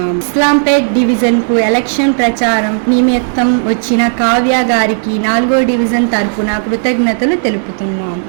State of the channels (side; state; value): left; silent; digital silence